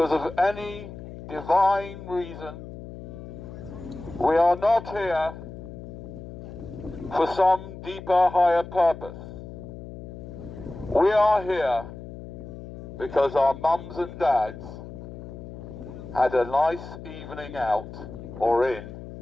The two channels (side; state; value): left; noise; hum, 12 dB below the sound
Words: of any divine reason. We are not here for some deeper, higher purpose. We are here because our mums and dads had a nice evening out or in